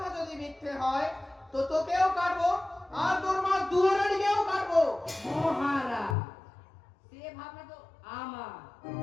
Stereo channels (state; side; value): drops out; right; at 6.2 s